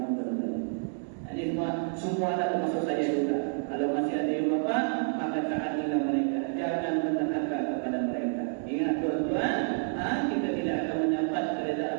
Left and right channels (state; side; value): silent; left; digital silence